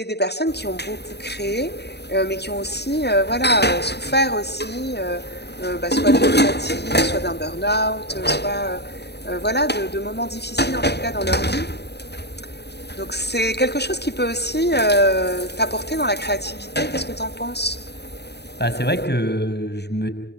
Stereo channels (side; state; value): right; late; 0.48 ms